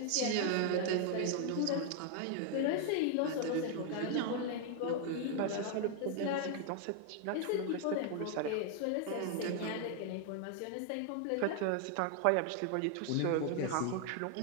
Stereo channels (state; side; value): different; both; correlation 0.00